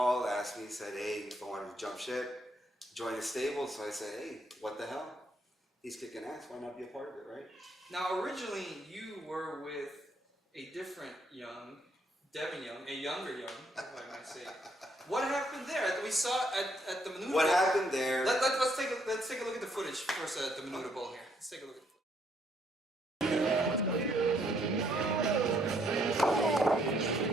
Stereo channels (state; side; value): normal; both; correlation 0.70